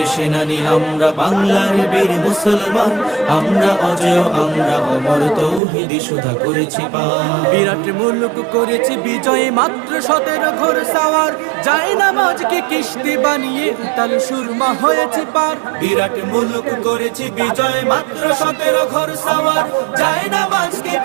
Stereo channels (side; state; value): left; drops out; at 5.6 s